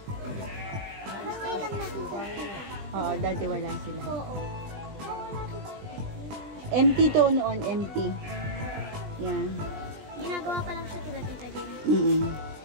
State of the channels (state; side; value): late; left; 20 ms